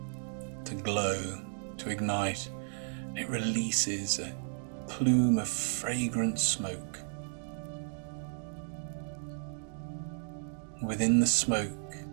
to glow, to ignite. It releases a plume of fragrant smoke. Within the smoke,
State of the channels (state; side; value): silent; left; digital silence